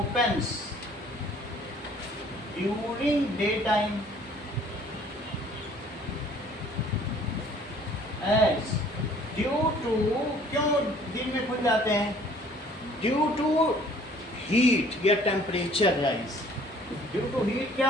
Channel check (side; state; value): both; normal; correlation 0.55